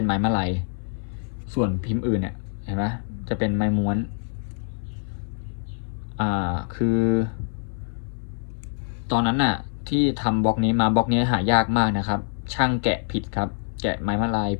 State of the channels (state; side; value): silent; right; 62 dB below the other